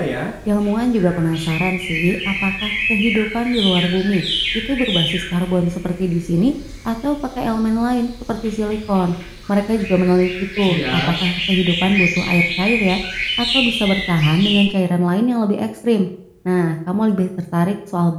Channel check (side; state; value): both; identical; correlation 1.00